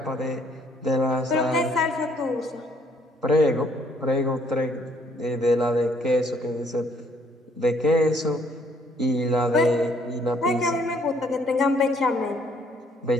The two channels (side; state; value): both; normal; correlation 0.65